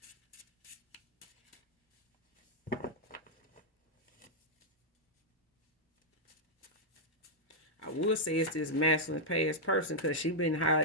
I would say it's this masculine past person, because she been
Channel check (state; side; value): normal; both; correlation -0.06